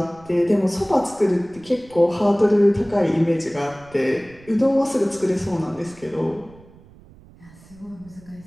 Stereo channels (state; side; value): noise; right; rumble, 24 dB below the sound